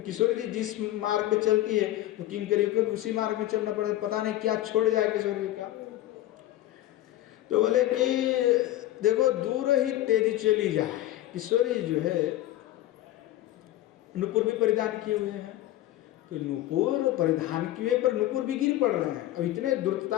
किशोर जी जिस मार्ग में चलती है तो किंकरियों को भी उसी मार्ग में चलना पड़े, पता नहीं क्या छोड़ जाए किशोर जी क्या। तो बोले कि देखो दूर ही तेजी चली जाए। किशोर जी जो है नुपुर भी परिधान किए हुए हैं, तो नुपुर परिधान किए पर नुपुर भी गिर पड़ रहे हैं। अब इतने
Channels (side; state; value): right; quieter; 14.6 dB